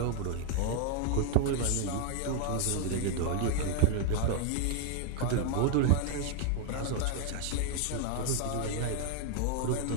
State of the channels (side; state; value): both; different; correlation 0.00